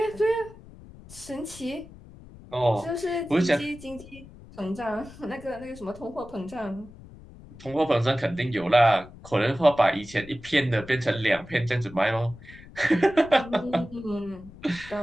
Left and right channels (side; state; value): left; noise; rumble, 19 dB below the sound